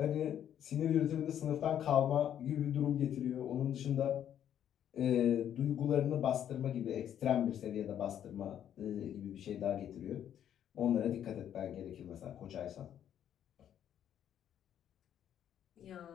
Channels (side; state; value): right; quieter; 10.1 dB